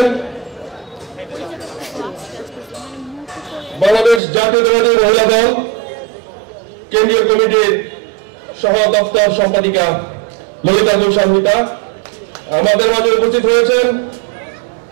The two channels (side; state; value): left; drops out; at 4.2 s